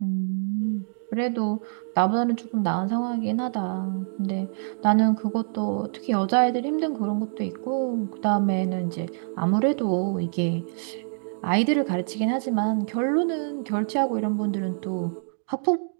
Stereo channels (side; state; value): left; silent; digital silence